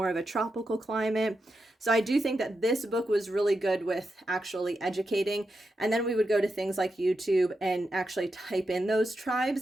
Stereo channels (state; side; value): normal; both; correlation 0.87